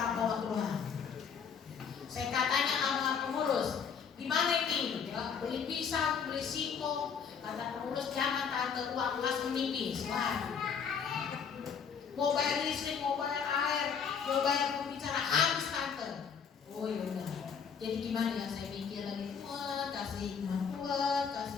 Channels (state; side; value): quieter; right; 6.7 dB